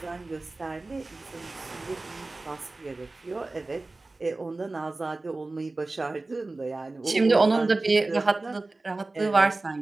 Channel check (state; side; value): quieter; left; 3.2 dB